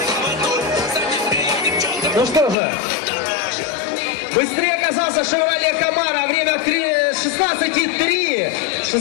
Ну что же, быстрее оказался Chevrolet Camaro, время 16,3,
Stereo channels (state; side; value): drops out; right; at 2.6 s